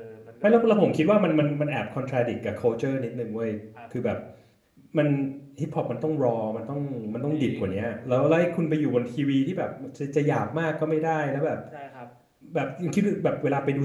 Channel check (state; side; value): identical; both; correlation 1.00